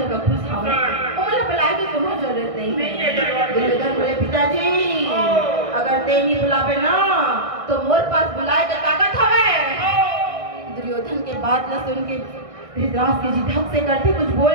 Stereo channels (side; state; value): left; late; 1.6 ms